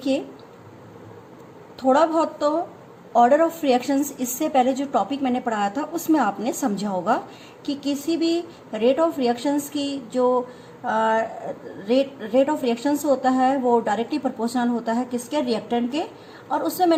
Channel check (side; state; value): both; identical; correlation 1.00